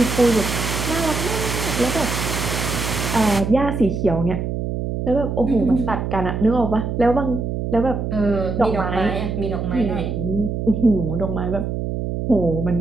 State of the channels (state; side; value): noise; right; hum, 3 dB below the sound